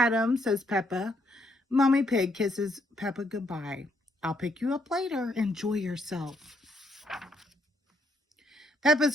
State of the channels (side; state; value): both; normal; correlation 0.74